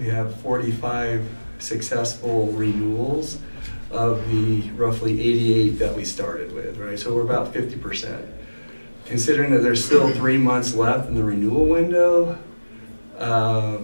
have 45 successful renewals of the roughly 88 that we started with, right? So we're about 50%. Considering that there's still 3 months left in the renewal window, I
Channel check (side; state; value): both; inverted; correlation -1.00